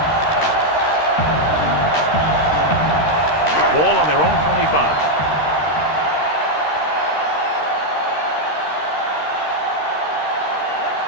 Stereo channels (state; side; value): late; right; 13 ms